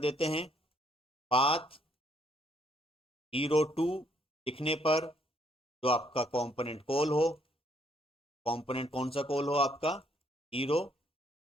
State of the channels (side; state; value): both; normal; correlation 0.68